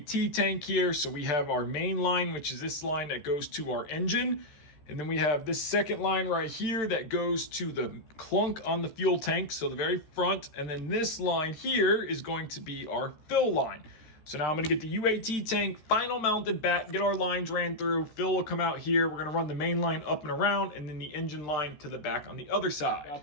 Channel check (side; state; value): right; late; 13 ms